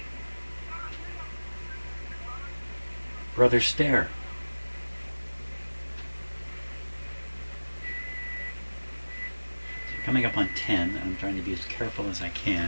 Brother Stare. So coming up on 10, I'm trying to be as careful as I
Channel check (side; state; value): both; inverted; correlation -1.00